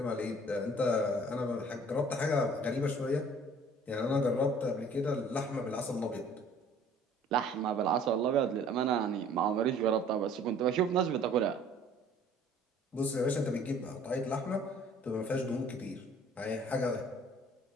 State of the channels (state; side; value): normal; both; correlation 0.53